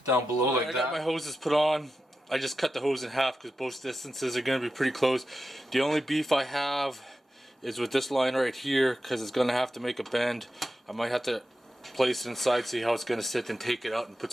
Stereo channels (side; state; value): both; normal; correlation 0.91